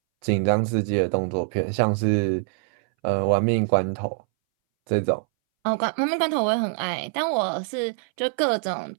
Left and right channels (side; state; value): left; silent; 61 dB below the other